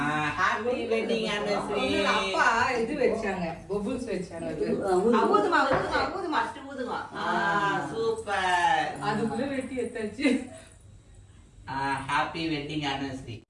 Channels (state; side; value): identical; both; correlation 1.00